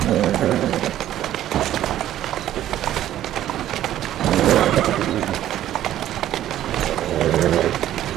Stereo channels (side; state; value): left; quieter; 12.5 dB